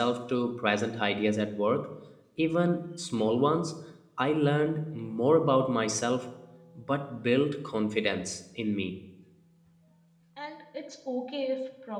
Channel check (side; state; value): both; identical; correlation 1.00